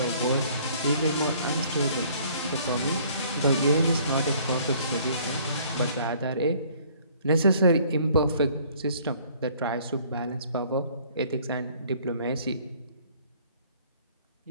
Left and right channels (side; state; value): both; inverted; correlation -0.58